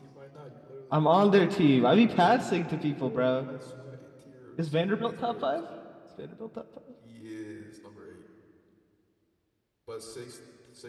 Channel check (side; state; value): both; identical; correlation 1.00